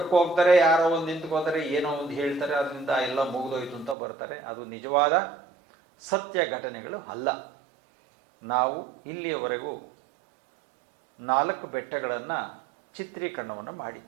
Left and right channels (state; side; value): drops out; left; at 4.0 s